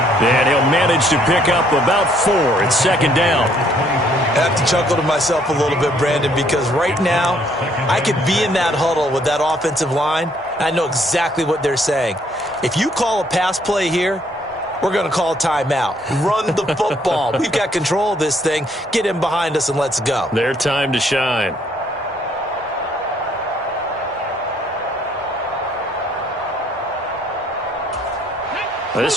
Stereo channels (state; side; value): normal; both; correlation 0.66